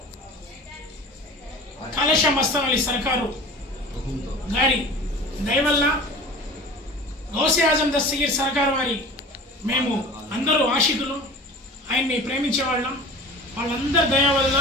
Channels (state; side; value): normal; both; correlation 0.39